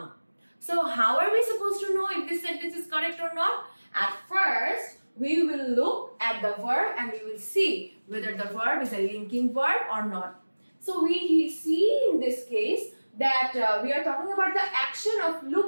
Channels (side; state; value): both; inverted; correlation -1.00